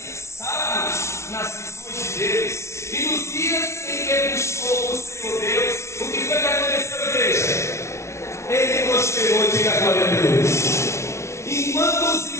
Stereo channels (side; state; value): right; late; 0.13 ms